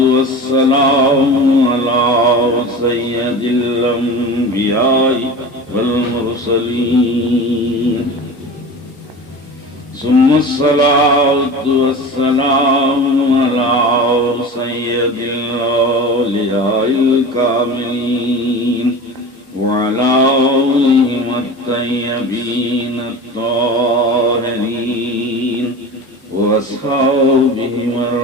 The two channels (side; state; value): both; normal; correlation 0.33